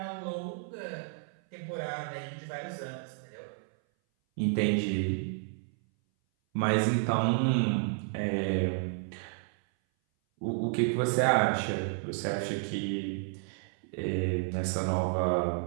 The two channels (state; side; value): silent; left; 57 dB below the other